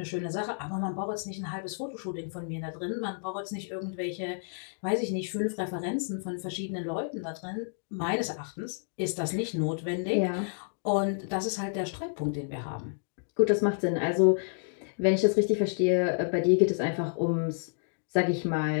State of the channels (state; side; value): silent; right; digital silence